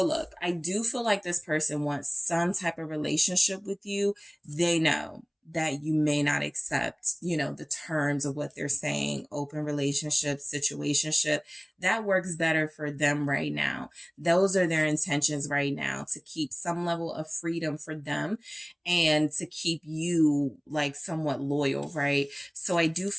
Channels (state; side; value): identical; both; correlation 1.00